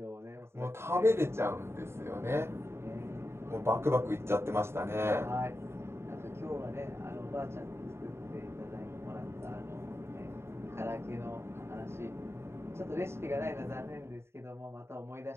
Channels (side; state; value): left; late; 0.12 ms